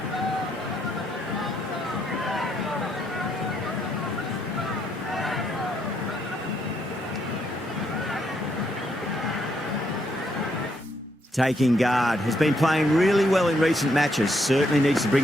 Taking guard, has been playing really well in recent matches. Certainly needs to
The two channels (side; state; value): both; normal; correlation 0.75